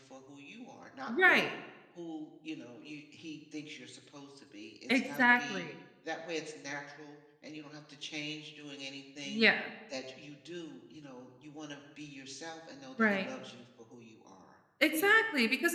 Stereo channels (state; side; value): identical; both; correlation 1.00